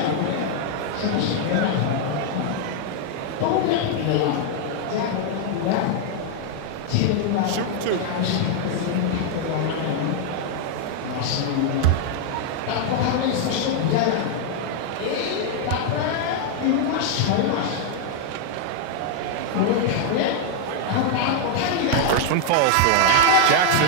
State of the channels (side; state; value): both; different; correlation 0.00